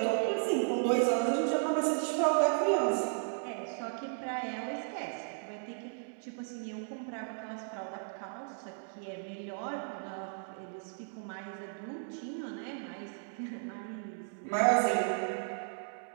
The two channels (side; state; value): left; silent; digital silence